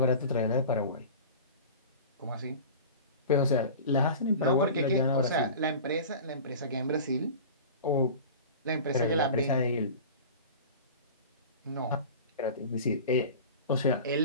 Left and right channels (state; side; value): inverted; both; correlation -0.36